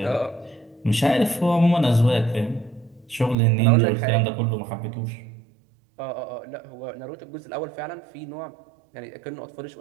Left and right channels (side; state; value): left; drops out; at 3.4 s